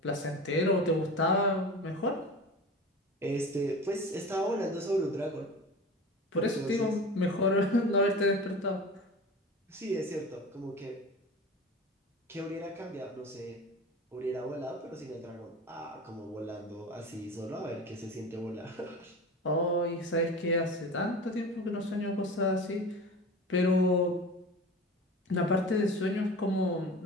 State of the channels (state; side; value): normal; both; correlation 0.33